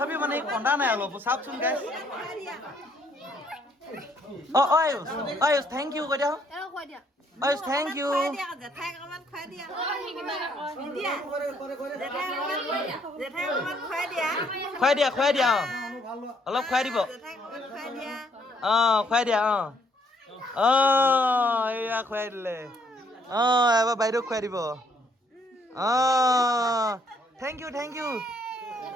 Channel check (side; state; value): both; normal; correlation 0.68